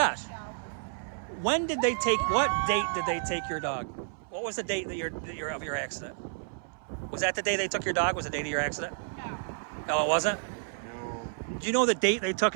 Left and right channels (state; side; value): silent; left; 58 dB below the other